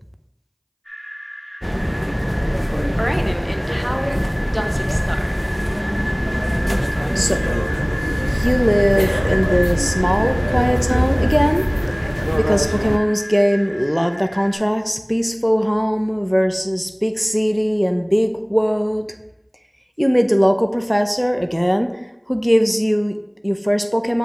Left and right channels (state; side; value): identical; both; correlation 1.00